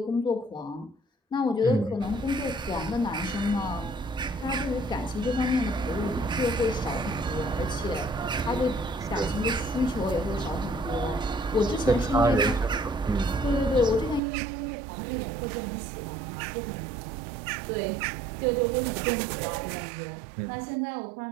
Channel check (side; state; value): left; drops out; at 14.2 s